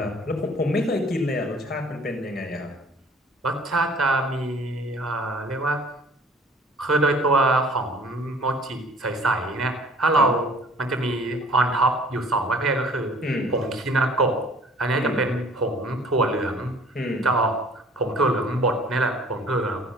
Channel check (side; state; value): both; normal; correlation 0.52